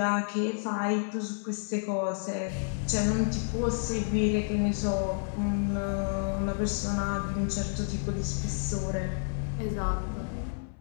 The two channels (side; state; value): right; silent; 58 dB below the other